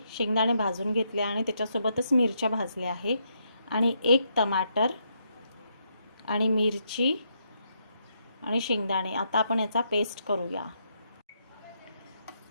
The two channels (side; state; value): both; inverted; correlation -0.78